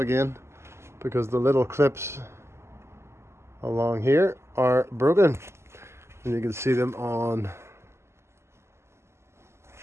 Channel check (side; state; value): left; late; 0.13 ms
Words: because the little clips along here are broken, and you can see them on